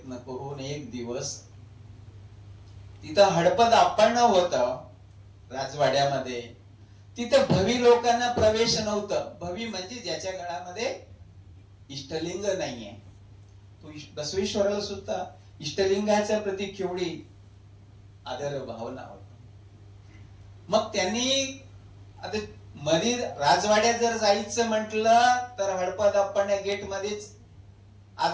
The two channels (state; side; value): identical; both; correlation 1.00